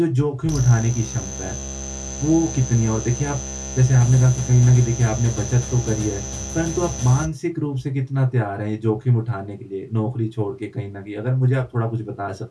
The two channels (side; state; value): both; identical; correlation 1.00